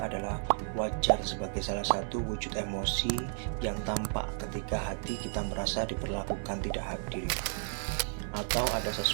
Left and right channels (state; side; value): silent; left; digital silence